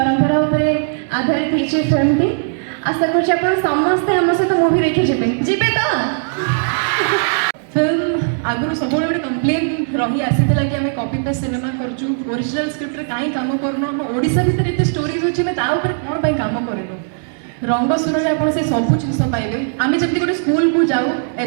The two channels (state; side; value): silent; left; digital silence